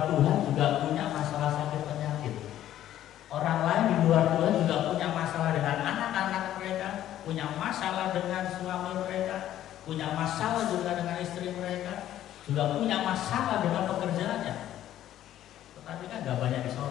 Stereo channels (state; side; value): quieter; right; 12.3 dB